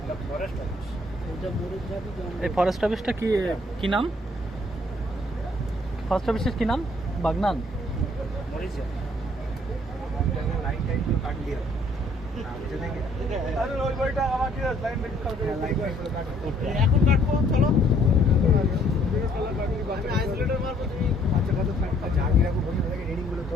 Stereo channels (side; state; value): both; normal; correlation 0.63